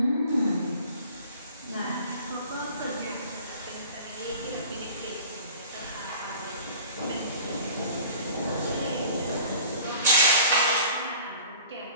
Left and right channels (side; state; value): both; inverted; correlation -0.46